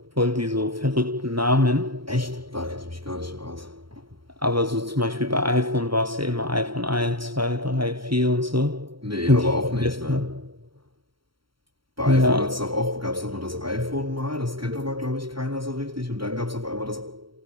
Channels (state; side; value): late; left; 0.74 ms